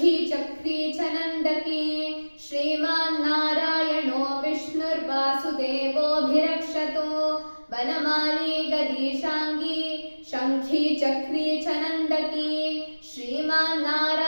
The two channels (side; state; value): both; inverted; correlation -1.00